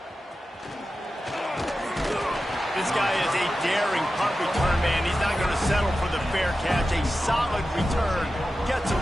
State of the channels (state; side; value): normal; both; correlation 0.93